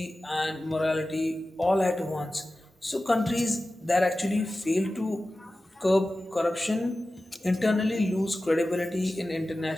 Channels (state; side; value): normal; both; correlation 0.95